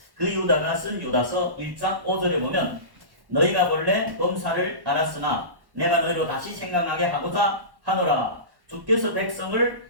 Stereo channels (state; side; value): late; left; 1.1 ms